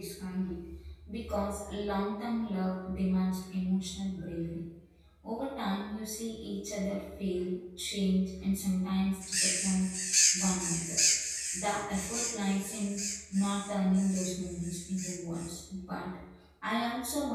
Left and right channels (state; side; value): identical; both; correlation 1.00